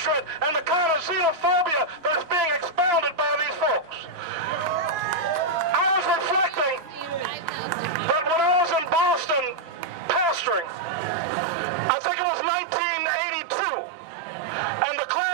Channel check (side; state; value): left; drops out; at 11.1 s